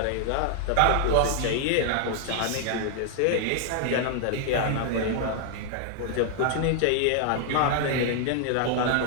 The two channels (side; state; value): both; different; correlation 0.00